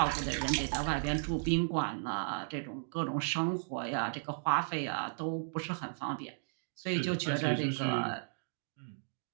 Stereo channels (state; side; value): silent; left; digital silence